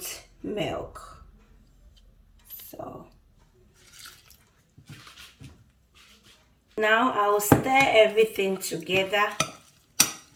milk. So now I will stir everything together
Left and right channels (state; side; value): identical; both; correlation 1.00